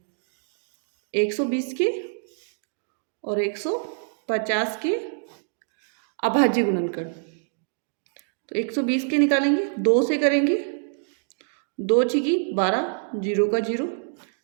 120 के और 150 के अभाज्य गुणनखंड। तो 120 के निकालेंगे, 2 से करेंगे, 2 छिकी 12, 0 का 0।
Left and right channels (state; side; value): silent; left; digital silence